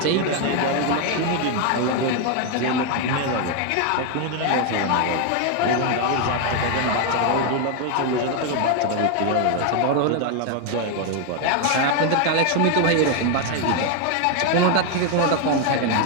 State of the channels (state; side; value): different; both; correlation 0.01